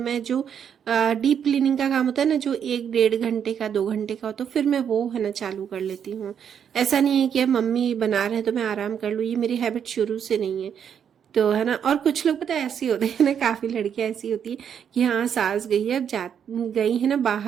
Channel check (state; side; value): quieter; left; 8.2 dB